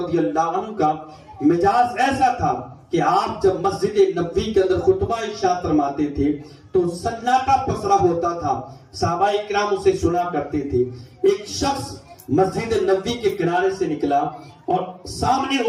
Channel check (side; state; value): both; identical; correlation 1.00